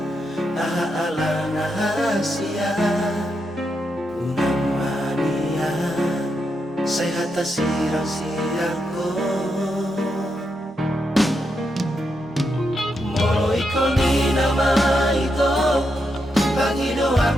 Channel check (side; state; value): both; normal; correlation 0.83